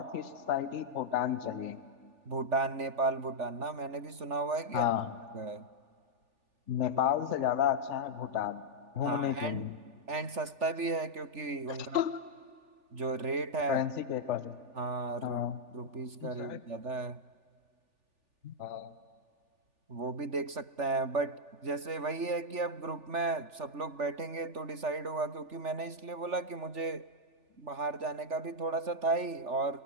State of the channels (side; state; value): left; late; 3.4 ms